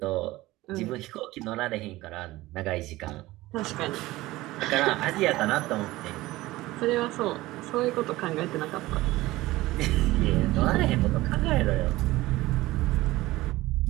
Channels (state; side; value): quieter; left; 18.3 dB